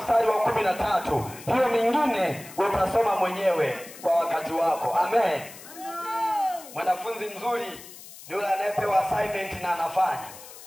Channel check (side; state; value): left; noise; hiss, 17 dB below the sound